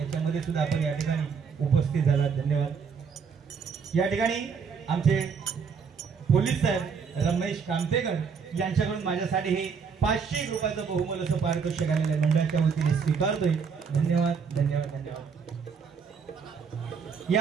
सुद्धा आपण या ठिकाणी उपस्थित झाला. धन्यवाद. या ठिकाणी आमचे पोलीस साहेब रमेश कामतेकर यांच्याकडून माझ्यासाठी हे 500 रुपयाचं बहुमोल असं पारितोषिक आलेलं मंडळाच्या वतीने स्वीकारतोय. धन्यवाद धन्यवाद धन्यवाद.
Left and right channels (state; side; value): quieter; left; 6.0 dB